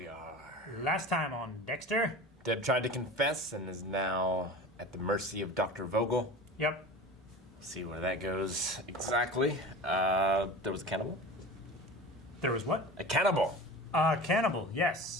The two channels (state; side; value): normal; both; correlation 0.35